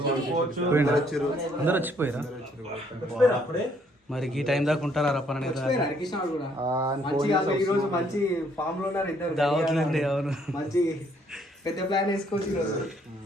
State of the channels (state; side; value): normal; both; correlation 0.67